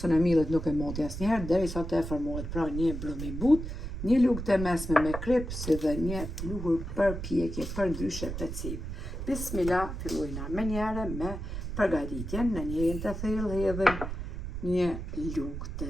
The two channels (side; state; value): right; noise; rumble, 6 dB below the sound